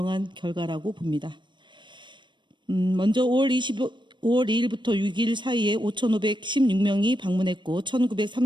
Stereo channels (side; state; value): left; late; 0.22 ms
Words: 결과라고 봅니다. 먼저 5월 2일부터 6일 사이에 5,516명이 방문했고